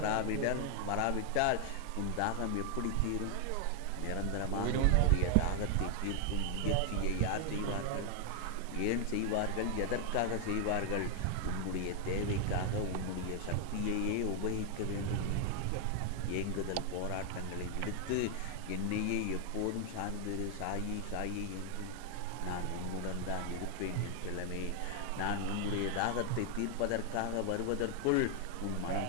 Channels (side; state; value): both; different; correlation 0.00